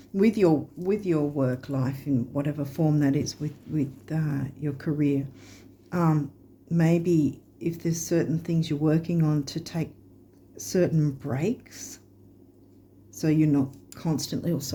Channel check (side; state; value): both; identical; correlation 1.00